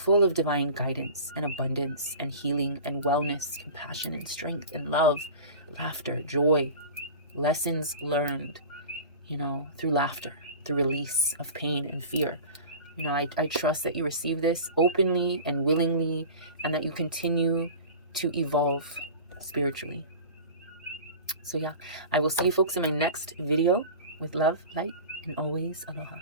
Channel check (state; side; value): inverted; both; correlation -0.36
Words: of divine guidance and abundance and healing and wellness, compassion and strength and love, laughter, joy, lessons learned, through laughter, through release of pain and fear. I trust that you receive this openly and willingly, and that you continue to evolve spiritually. So yeah, I will see you folks in my next video. With love, light, and always aloha.